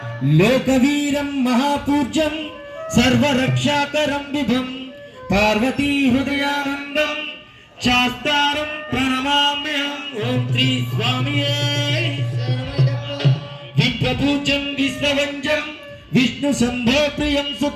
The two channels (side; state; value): both; identical; correlation 1.00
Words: లోకవీరం మహాపూజ్యం సర్వరక్షాకరం విభం పార్వతీ హృదయానందం శాస్తారం ప్రణమామ్యహం ఓం శ్రీ స్వామియే విశ్వపూజ్యం విశ్వవంజం విష్ణు శంభో ప్రియం